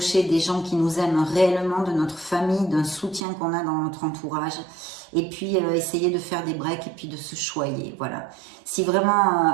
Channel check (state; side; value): drops out; left; at 3.2 s